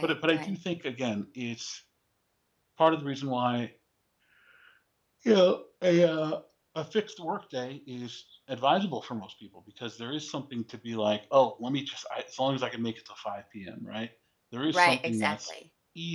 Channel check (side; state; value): both; identical; correlation 1.00